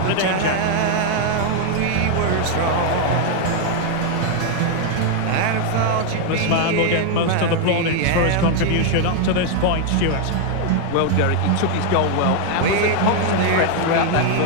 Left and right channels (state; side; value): different; both; correlation 0.00